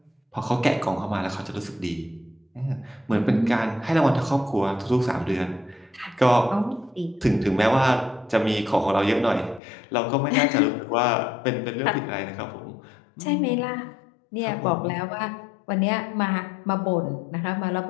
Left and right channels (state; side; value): drops out; right; at 9.6 s